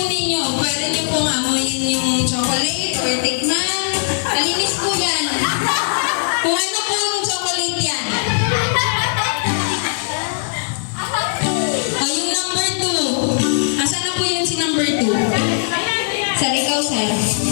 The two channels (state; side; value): silent; right; digital silence